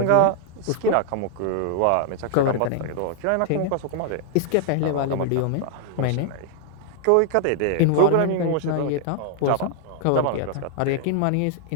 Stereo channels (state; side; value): different; both; correlation 0.00